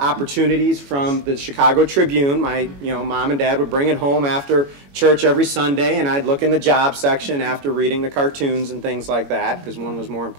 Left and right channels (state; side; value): late; left; 21 ms